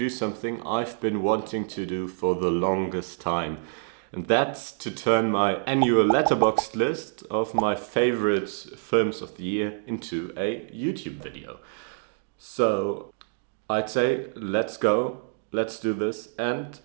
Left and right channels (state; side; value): silent; left; digital silence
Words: something I've been wanting to do for the longest time. And that's to turn my annual Letterboxd list of my favorite films of the year into a YouTube video. So I'd say let's go, let's do this, and